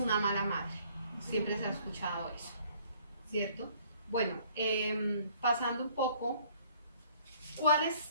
mala madre. Siempre se ha escuchado eso, ¿cierto? Bueno, pasando un poco, ¿cuáles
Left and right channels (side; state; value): both; inverted; correlation -0.58